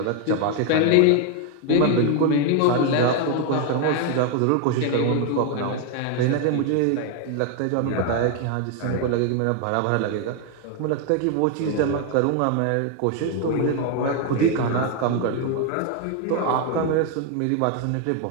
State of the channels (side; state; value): both; different; correlation 0.00